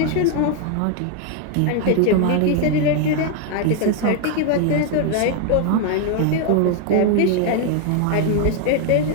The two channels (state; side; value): different; both; correlation 0.01